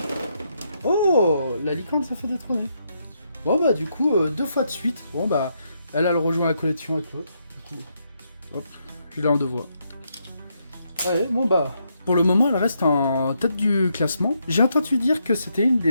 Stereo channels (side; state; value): both; inverted; correlation -0.78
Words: Oh, la licorne, ça fait détrôner. Bon, bah, du coup, 2 fois de suite. Bon, bah, elle rejoint la collection avec l'autre. Du coup, hop, je l'ai en 2 voix. Allez, bon, bah. Pour le moment, elle reste en tête du classement. J'ai entendu dire que c'était une